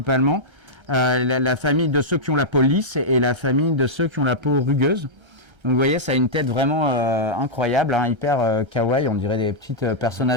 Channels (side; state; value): left; late; 1.3 ms